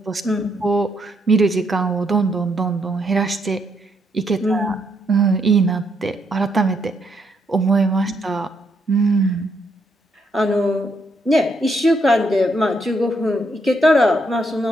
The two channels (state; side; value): normal; both; correlation 0.76